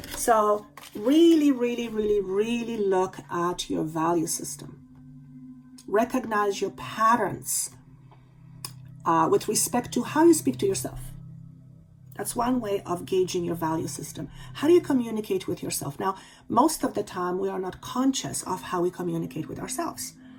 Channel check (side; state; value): both; identical; correlation 1.00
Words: So really, really, really, really look at your value system. Recognize your patterns with respect to how you speak to yourself. That's one way of gauging your value system. How do you communicate with yourself? Now, most of the time, we are not conscious of how we communicate with ourselves.